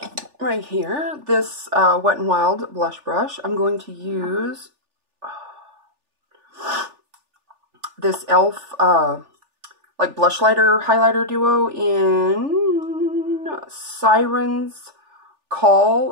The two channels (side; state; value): left; late; 3.4 ms